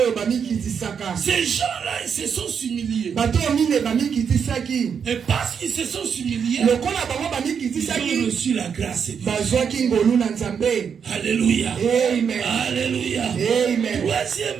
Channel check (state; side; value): quieter; left; 7.0 dB